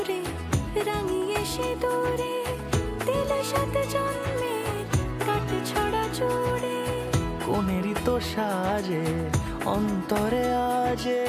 রাঙিয়ে সে দূরে দিলে 7 জন্মের কাট ছড়া জুড়ে। কোনেরই তো সাজে অন্তরে আজে,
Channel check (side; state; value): both; identical; correlation 1.00